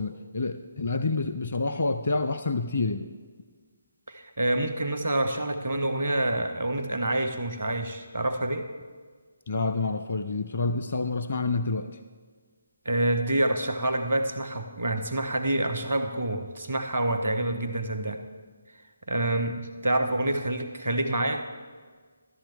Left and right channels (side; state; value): both; inverted; correlation -0.77